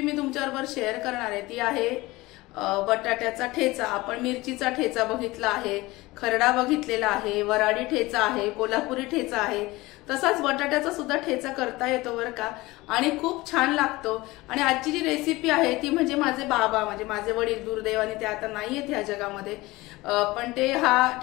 मी तुमच्याबरोबर शेअर करणार आहे ती आहे बटाट्याचा ठेचा। आपण मिरचीचा ठेचा बघितला आहे, खरडा बघितलेला आहे, वराडी ठेचा आहे, कोल्हापुरी ठेचा आहे, तसाच बटाट्याचा सुद्धा ठेचा करता येतो बरं का, आणि खूप छान लागतो। आणि आजची जी रेसिपी आहे ती म्हणजे माझे बाबा म्हणजे माझे वडील दुर्दैवाने ते आता नाहीयेत ह्या जगामध्ये, पण ते हा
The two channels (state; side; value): quieter; right; 20.5 dB